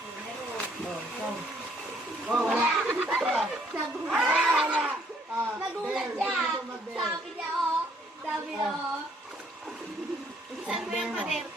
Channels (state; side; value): normal; both; correlation 0.65